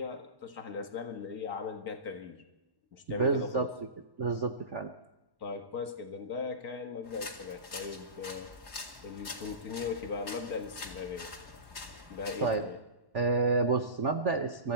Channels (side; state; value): left; late; 1.1 ms